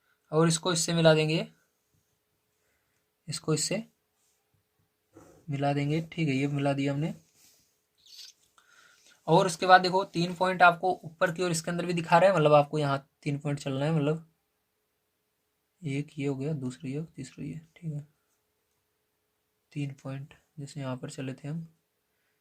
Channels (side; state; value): both; identical; correlation 1.00